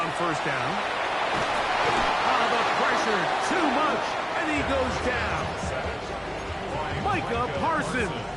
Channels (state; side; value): identical; both; correlation 1.00